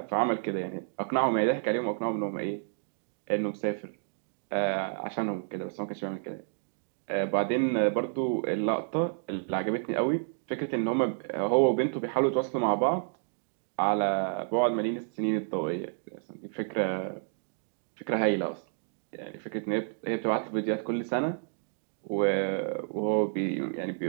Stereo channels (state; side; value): silent; left; digital silence